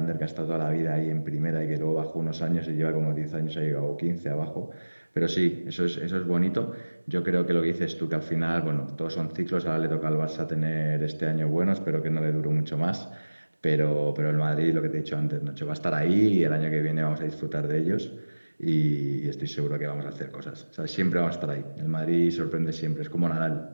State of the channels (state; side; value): inverted; both; correlation -1.00